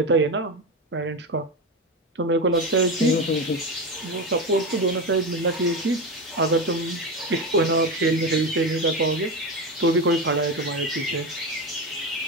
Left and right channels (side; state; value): both; normal; correlation 0.19